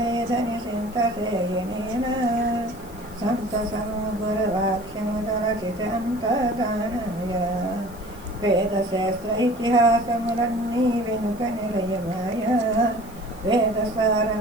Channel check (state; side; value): noise; left; hiss, 22 dB below the sound